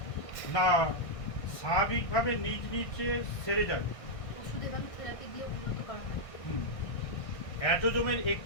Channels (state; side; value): late; right; 1.6 ms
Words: না স্বাভাবিকভাবে নিজ নিজে সেরে যায়? ওষুধ এবং থেরাপি দিয়ে উন্নত করা হয়। অটিজমের